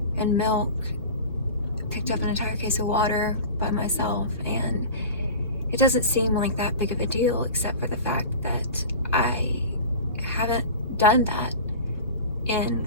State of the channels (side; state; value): both; inverted; correlation -0.34